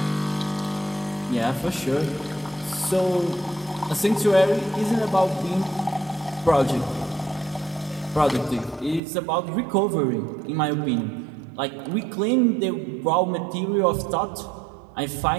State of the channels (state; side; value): drops out; left; at 9.0 s